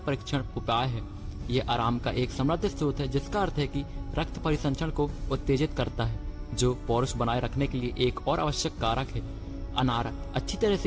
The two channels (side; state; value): both; identical; correlation 1.00